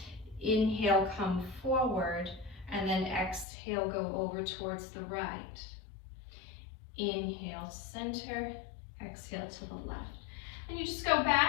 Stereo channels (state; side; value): drops out; right; at 3.5 s